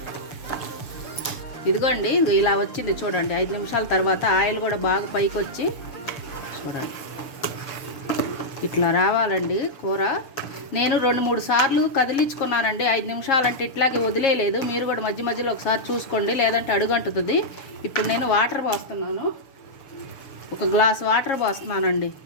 ఇదిగోండి ఇలా వచ్చింది చూడండి. 5 నిమిషాల తర్వాత ఆయిల్ కూడా బాగా పైకి వచ్చి చూడండి, ఇట్లా రావాలండి కూర. నేను 2-3 సార్లు కదిలించుకున్నానండి. 5 నిమిషాలు అంటే ఇట్లాగే వదిలేయలేదు. మీరు కూడా మధ్య మధ్యలో ఒకసారి చూసుకోండి, లేదంటే అడుగంటుతుంది. ఇప్పుడు నేను వాటర్ పోస్తున్నాను, 1 గ్లాస్ వాటర్ పోస్తున్నానండి.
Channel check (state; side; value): late; right; 6.9 ms